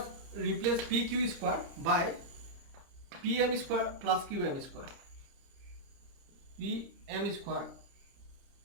replace PQ square by PM square plus QM square. PM square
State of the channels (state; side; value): late; left; 30 ms